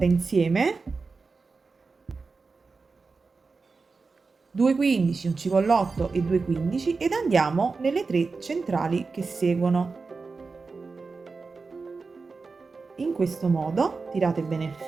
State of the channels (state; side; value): quieter; left; 4.3 dB